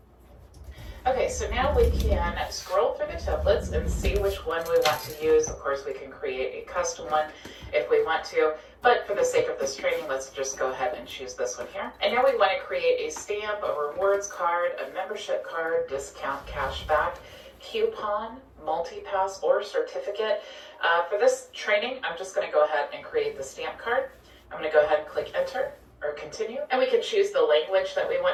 Okay, so now we can scroll through the templates and see which one we want to use. Of course, we can create a custom one if we want to, but for the sake of this training, let's just go ahead and choose this one here. And now we want to create a stamp, a rewards card, a membership card, discount, cashback, coupon, multi-pass, or certificate. For this training, I'm just going to go ahead and create the stamp card. I'm going to go ahead and click enter or continue, and we can choose the language that we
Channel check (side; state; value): both; identical; correlation 1.00